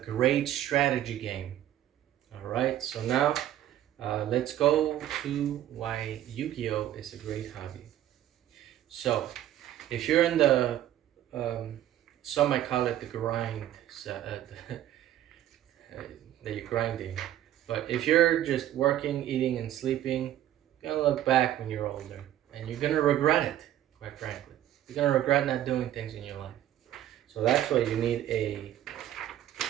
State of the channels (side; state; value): left; quieter; 12.3 dB